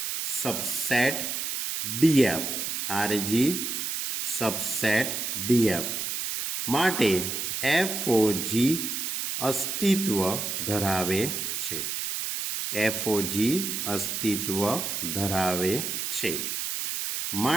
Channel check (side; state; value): right; noise; hiss, 2 dB below the sound